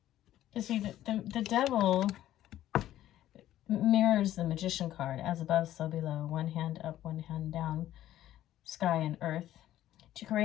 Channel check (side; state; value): right; quieter; 13.1 dB